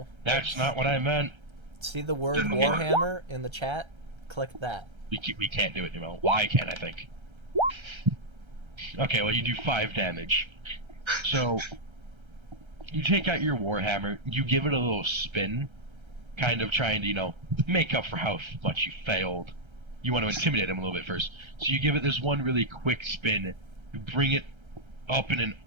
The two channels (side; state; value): left; late; 1.3 ms